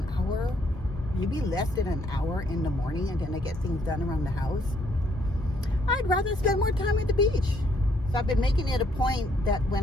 hour, maybe less than an hour in the morning, and then I get things done around the house. I'd rather spend more time at the beach. So I've been making it a point that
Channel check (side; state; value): both; normal; correlation 0.69